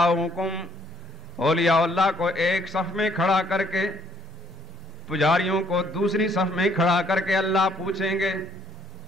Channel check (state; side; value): normal; both; correlation 0.66